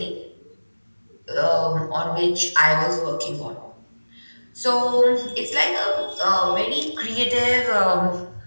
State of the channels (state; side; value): inverted; both; correlation -1.00